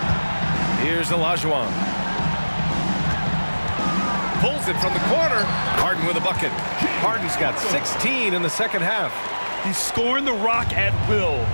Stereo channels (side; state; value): both; inverted; correlation -1.00